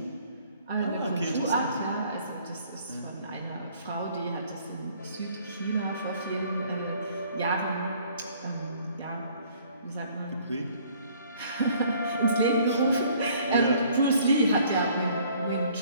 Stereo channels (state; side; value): inverted; both; correlation -0.59